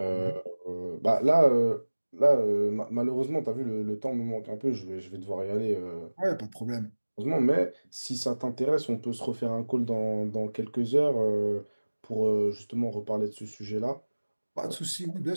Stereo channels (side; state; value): both; inverted; correlation -1.00